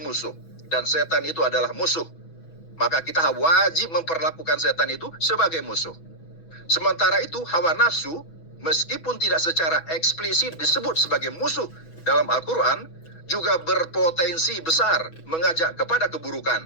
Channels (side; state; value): right; late; 6.1 ms